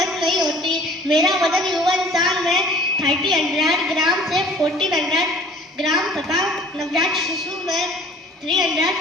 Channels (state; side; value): normal; both; correlation 0.50